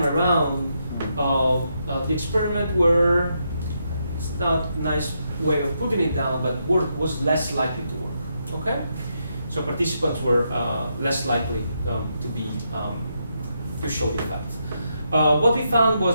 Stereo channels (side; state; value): both; inverted; correlation -0.81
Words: around, the experiment were, it's not a nice way of putting it down, but was less likely to work. Okay? So participants were less likely to show the effect. What we found